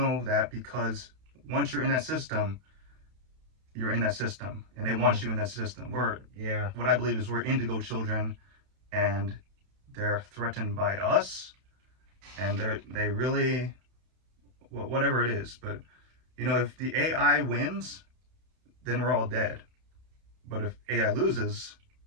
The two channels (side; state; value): left; late; 32 ms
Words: that because once you're in that system, you're in that system, and they want you in that system. Yeah. What I believe is we're indigo children, and they're threatened by us, and they really, whatever it is. But if the AI wins, then we're all dead. But if AI loses,